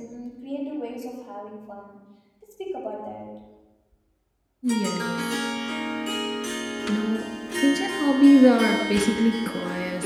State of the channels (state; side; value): identical; both; correlation 1.00